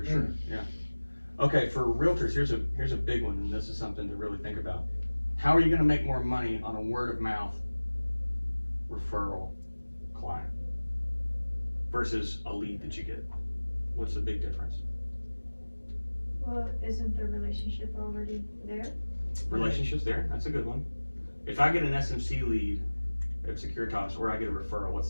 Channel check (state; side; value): inverted; both; correlation -1.00